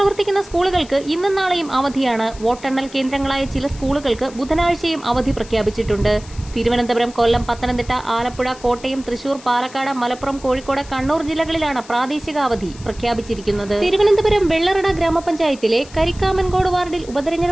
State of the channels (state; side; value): noise; left; hiss, 20 dB below the sound